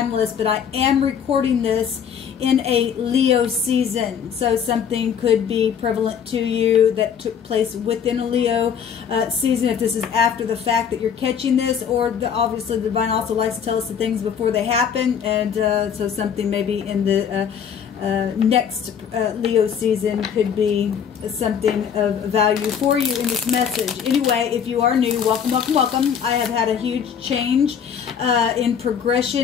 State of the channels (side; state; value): right; quieter; 7.7 dB